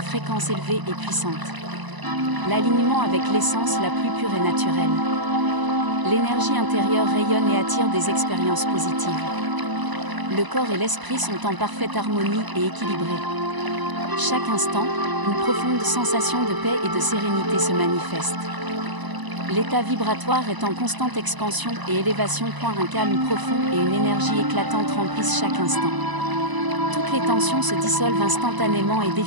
élevée et puissante. L'alignement avec l'essence la plus pure et naturelle. L'énergie intérieure rayonne et attire des expériences positives. Le corps et l'esprit sont en parfaite harmonie et équilibrés. Chaque instant, une profonde sensation de paix et de sérénité se manifeste. L'état vibratoire est en constante expansion et élévation. Un calme profond et une énergie éclatante remplissent chaque instant. Toutes les tensions se dissolvent instantanément et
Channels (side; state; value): left; late; 1.0 ms